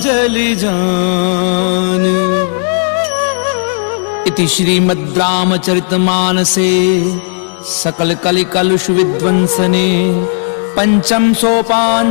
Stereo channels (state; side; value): silent; right; digital silence